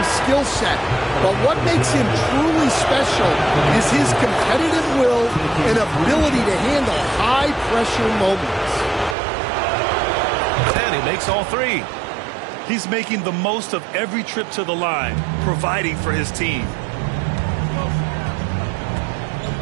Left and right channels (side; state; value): left; drops out; at 9.2 s